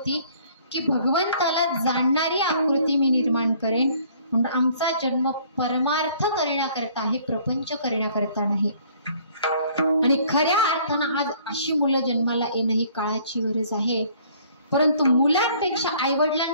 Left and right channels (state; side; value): inverted; both; correlation -0.58